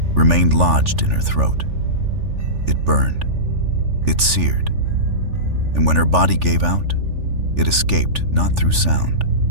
remained lodged in her throat. It burned, it seared, and when her body gave out, it escaped not through sound,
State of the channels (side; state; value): left; late; 3.4 ms